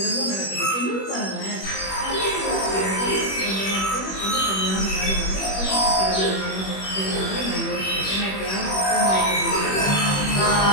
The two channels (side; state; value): right; late; 21 ms